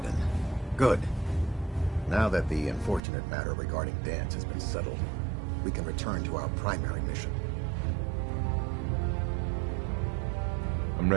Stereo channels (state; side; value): drops out; left; at 3.0 s